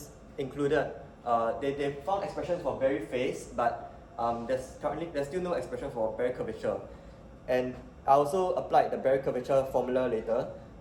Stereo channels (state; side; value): identical; both; correlation 1.00